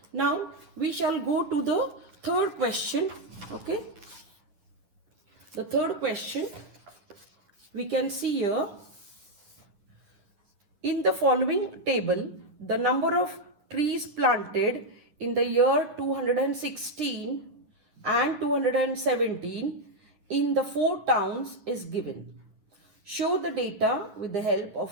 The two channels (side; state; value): left; late; 9.7 ms